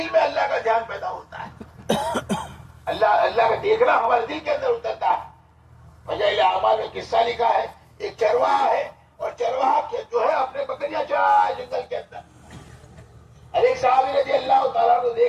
میں اللہ کا دھیان پیدا ہوتا ہے، اللہ کا دیکھنا ہمارے دل کے اندر اترتا ہے۔ فضائل اعمال میں قصہ لکھا ہے، ایک چرواہا ہے اور چرواہا جو ہے اپنے بکریاں چرا ہے جنگل کے اندر۔ اور ایک صحابی رضی اللہ تعالیٰ کو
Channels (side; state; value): both; identical; correlation 1.00